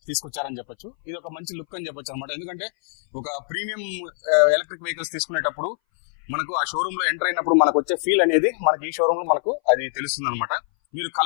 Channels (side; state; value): right; silent; 60 dB below the other